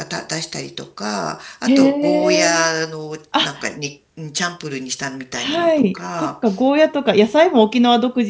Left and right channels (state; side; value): identical; both; correlation 1.00